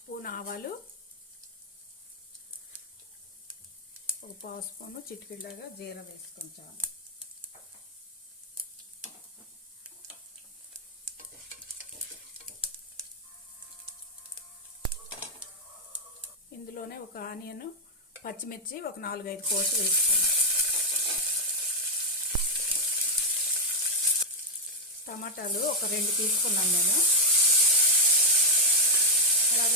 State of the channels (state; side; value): normal; both; correlation -0.01